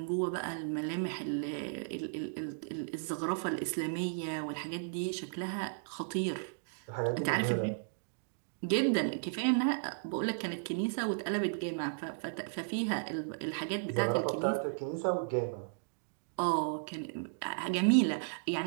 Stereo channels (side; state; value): left; silent; digital silence